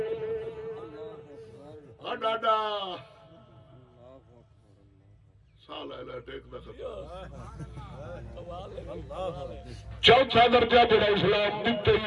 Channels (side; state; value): both; identical; correlation 1.00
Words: ڈاڈا سال ہے ٹیک دا خطا. چوتھا درجہ جڑا اسلام دیتے